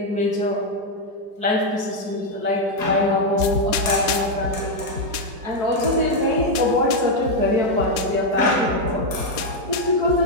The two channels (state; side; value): late; left; 4.3 ms